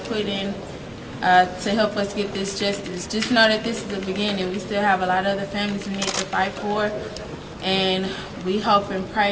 put in to help us get this justice. Just know that this is the beginning. We still have a lot of other families we need to fight for, and we hope and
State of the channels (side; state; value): both; identical; correlation 1.00